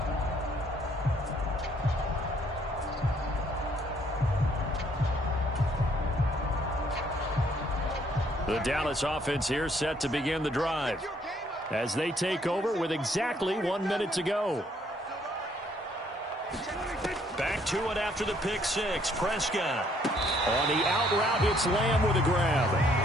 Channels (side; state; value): both; normal; correlation 0.66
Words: The Dallas offense here set to begin the drive as they take over with exactly 1 minute to go. Back to it after the pick 6. Prescott. On the out route, it's Lamb with a grab.